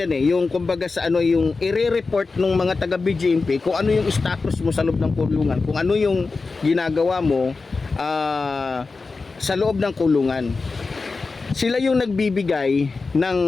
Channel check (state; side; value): quieter; right; 4.1 dB